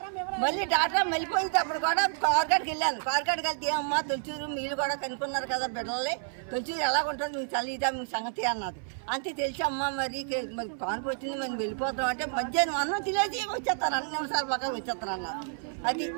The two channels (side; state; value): left; silent; 58 dB below the other